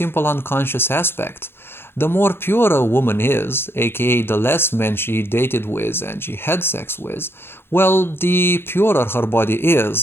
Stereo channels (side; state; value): right; late; 0.11 ms